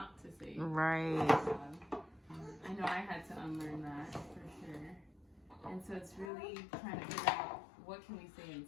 to say right. good job. I know I had to unlearn that for sure. And so it's really trying to figure out what can we say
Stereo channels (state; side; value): drops out; right; at 6.3 s